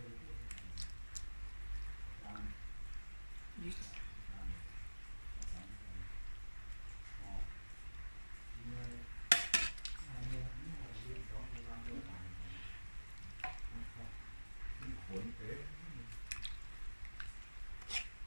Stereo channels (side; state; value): both; inverted; correlation -1.00